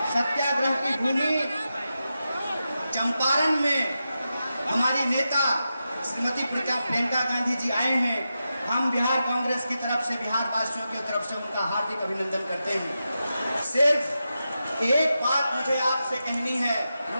सत्याग्रह की भूमि चंपारण में हमारी नेता श्रीमती प्रियंका गांधी जी आए हैं। हम बिहार कांग्रेस की तरफ से, बिहार वासियों की तरफ से उनका हार्दिक अभिनंदन करते हैं। सिर्फ एक बात मुझे आपसे कहनी है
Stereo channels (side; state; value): both; inverted; correlation -0.90